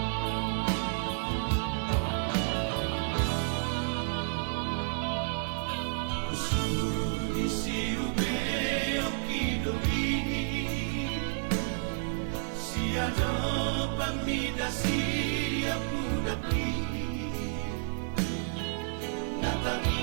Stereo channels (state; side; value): silent; left; digital silence